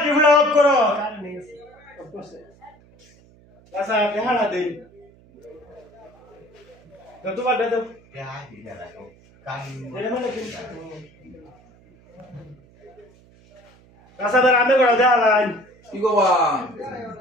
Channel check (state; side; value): noise; right; hum, 28 dB below the sound